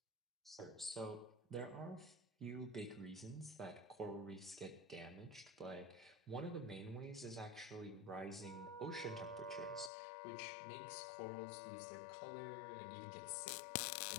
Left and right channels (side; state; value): right; drops out; at 9.9 s